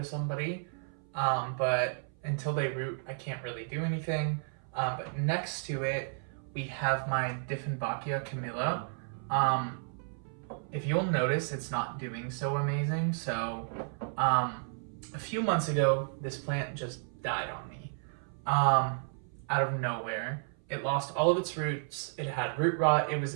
somebody. But until they root, I can't really do anything. But next to it, we have my Dieffenbachia Camilla. If you'll notice, it's not doing so amazing. So a few months ago, this plant just died on me out of nowhere. It lost all of its roots. It had root rot. It was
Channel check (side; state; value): left; silent; 56 dB below the other